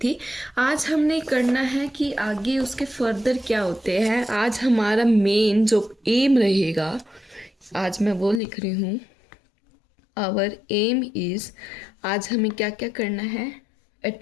आज हमने करना है कि आगे उसके फर्दर क्या होते हैं। आज हमारा मेन जो एम रहेगा, आज मैं वो लिख रही हूँ, आवर एम इज़, आज हमें क्या क्या करना है।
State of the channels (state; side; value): drops out; right; at 8.4 s